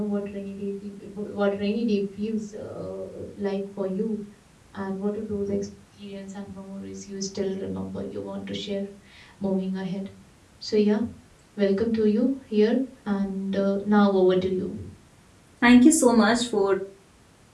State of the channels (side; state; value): both; identical; correlation 1.00